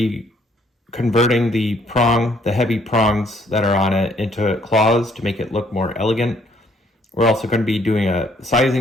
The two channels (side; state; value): both; normal; correlation 0.66